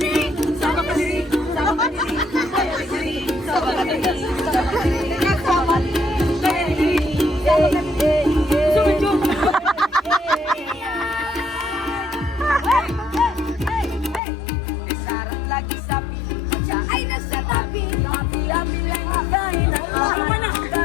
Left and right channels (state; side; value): drops out; right; at 14.2 s